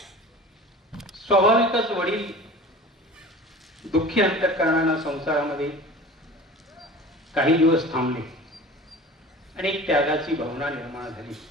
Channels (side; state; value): both; normal; correlation 0.39